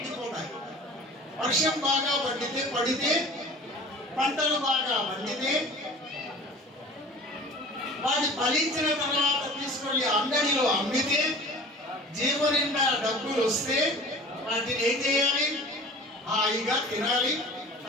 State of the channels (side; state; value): both; normal; correlation 0.41